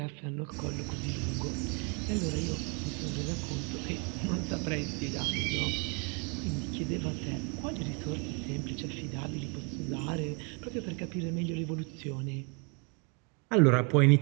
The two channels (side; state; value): left; quieter; 33.0 dB